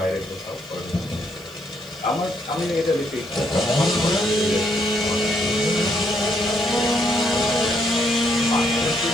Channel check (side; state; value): left; noise; hiss, 25 dB below the sound